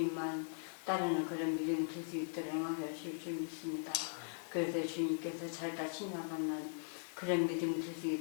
따르는 그런 믿음이 될 수 있도록 영광들을 줄 줄 믿습니다. 그래서 주님께서 잘다 칭찬받는 그런 믿음이 될 수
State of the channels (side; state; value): right; silent; digital silence